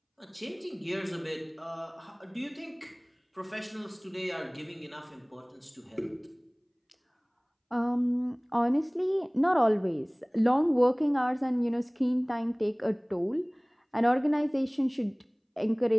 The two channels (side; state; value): both; identical; correlation 1.00